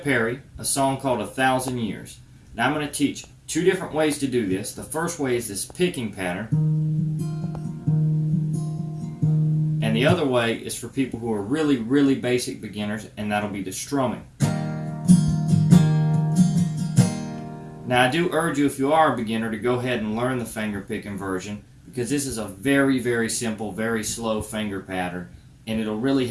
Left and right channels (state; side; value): identical; both; correlation 1.00